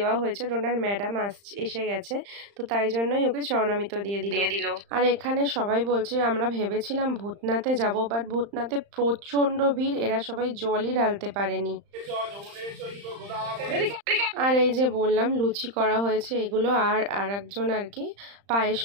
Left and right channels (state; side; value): late; left; 35 ms